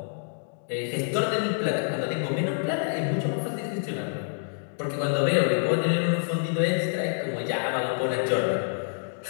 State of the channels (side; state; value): right; silent; digital silence